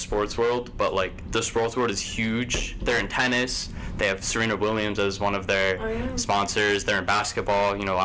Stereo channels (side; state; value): both; identical; correlation 1.00